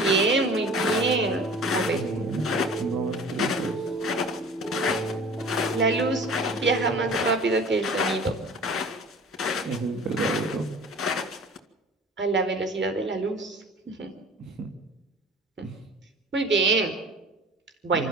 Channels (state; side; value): normal; both; correlation 0.43